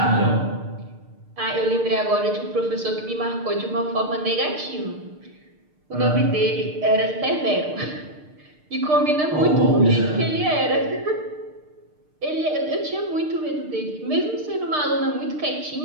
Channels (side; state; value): left; late; 6.6 ms